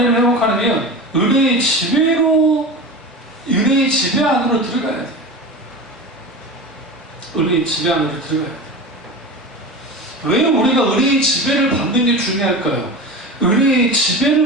회복하려면 은혜의 지배 안으로 들어가야 돼요. 은혜의 지배 안으로 들어가야 돼요. 왜 우리가 은혜의 지배를 받는 게 중요할까요? 은혜의 지배를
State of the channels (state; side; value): normal; both; correlation 0.29